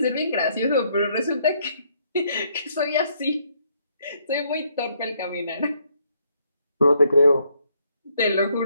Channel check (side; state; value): both; inverted; correlation -0.71